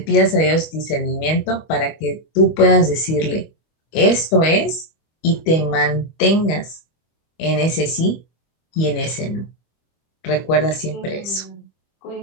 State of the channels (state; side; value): late; right; 25 ms